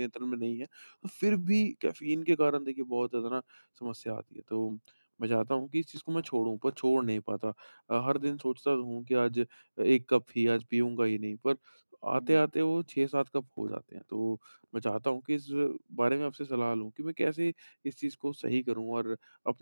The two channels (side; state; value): both; inverted; correlation -1.00